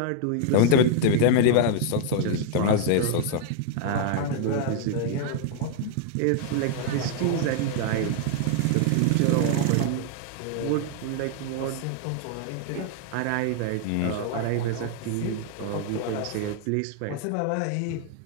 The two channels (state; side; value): different; both; correlation 0.00